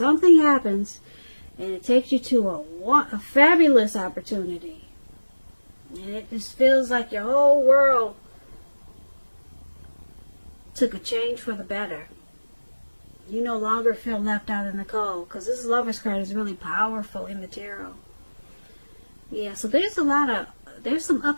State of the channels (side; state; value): both; inverted; correlation -1.00